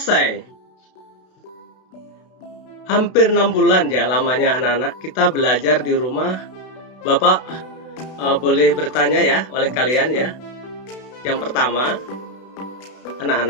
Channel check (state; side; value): late; right; 32 ms